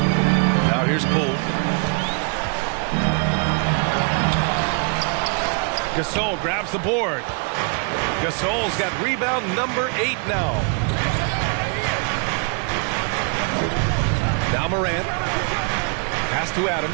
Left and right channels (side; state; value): left; quieter; 37.5 dB